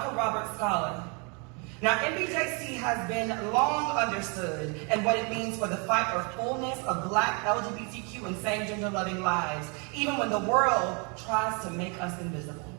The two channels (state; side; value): quieter; left; 33.8 dB